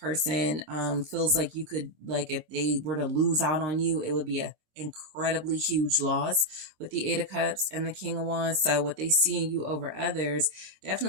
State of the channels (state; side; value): late; left; 26 ms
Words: feels like you could, like, if they were to lose out on you, it would be a incredibly huge loss with the Eight of Cups and the King of Wands. So what they see in you over others